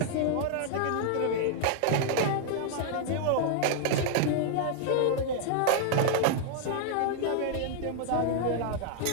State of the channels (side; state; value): both; different; correlation 0.00